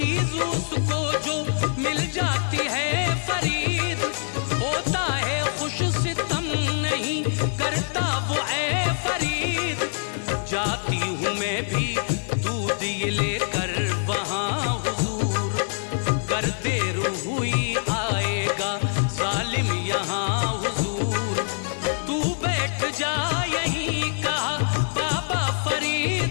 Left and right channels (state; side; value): silent; right; 62 dB below the other